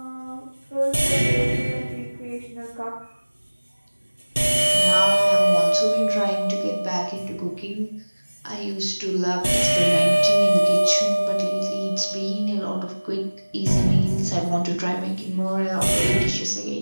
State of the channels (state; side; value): inverted; both; correlation -1.00